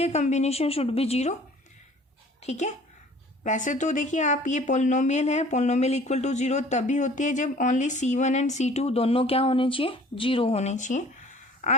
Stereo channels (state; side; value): normal; both; correlation 0.51